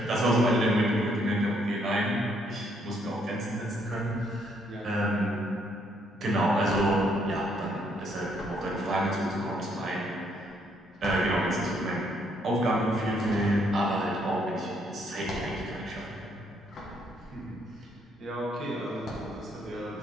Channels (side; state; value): both; normal; correlation 0.70